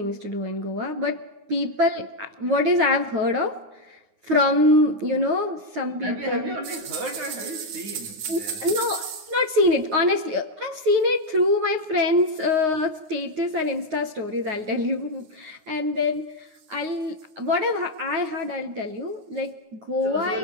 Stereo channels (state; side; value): late; left; 9.5 ms